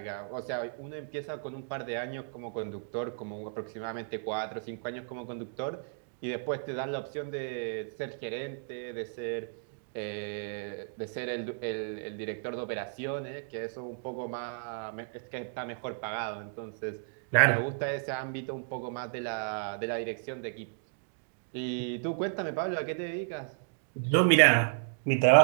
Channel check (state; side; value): silent; left; digital silence